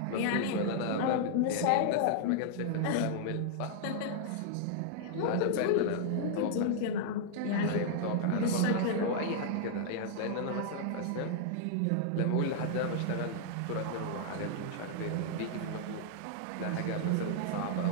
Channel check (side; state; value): both; different; correlation -0.01